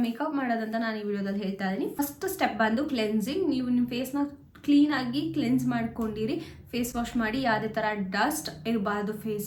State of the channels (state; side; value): identical; both; correlation 1.00